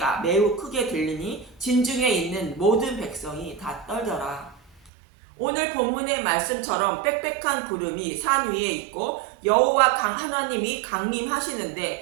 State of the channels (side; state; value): left; drops out; at 4.9 s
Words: 매우 크게 들리니 진중에 있는 모든 백성이 다 떨더라. 오늘 본문의 말씀처럼 빽빽한 구름이 산 위에 있고 여호와 하나님이